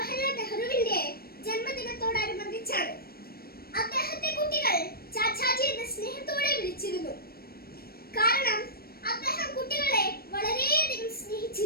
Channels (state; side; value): late; right; 0.44 ms